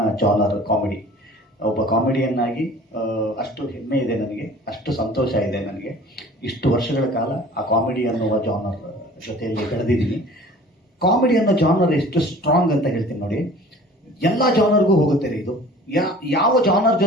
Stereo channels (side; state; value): both; normal; correlation 0.46